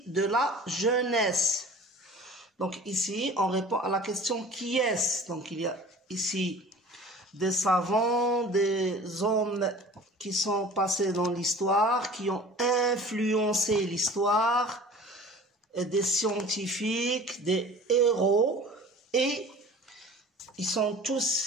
de la jeunesse. Donc ici, on répond à la question qui est-ce. Donc il y a ici des savants, des hommes qui sont passés dans l'histoire, qui ont influencé l'histoire, des scientifiques, des héros, et ils sont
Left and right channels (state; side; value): normal; both; correlation 0.43